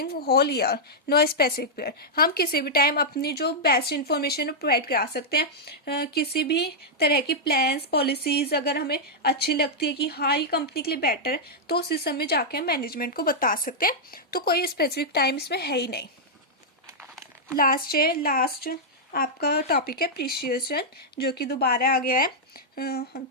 whole year, no specific period. हम किसी भी टाइम अपनी जो बेस्ट इंफॉर्मेशन प्रोवाइड करा सकते हैं। किसी भी तरह की प्लान्स पॉलिसीज अगर हमें अच्छी लगती है कि हाँ ये कंपनी के लिए बेटर है, तो उस समय जाके हम मैनेजमेंट को बता सकते हैं। तो कोई स्पेसिफिक टाइम इसमें है ही नहीं। लास्ट आपका टॉपिक है प्रिसिएशन, जो कि दोबारा आ गया है।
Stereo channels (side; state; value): both; normal; correlation -0.06